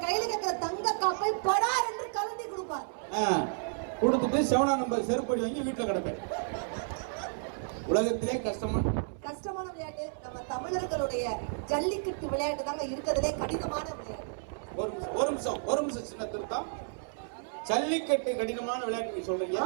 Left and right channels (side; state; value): left; silent; 57 dB below the other